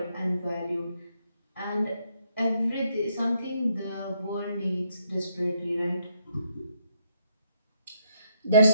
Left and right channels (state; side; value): inverted; both; correlation -0.74